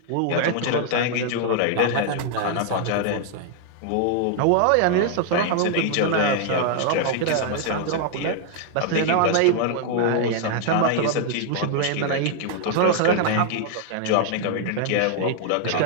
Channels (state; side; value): different; both; correlation 0.00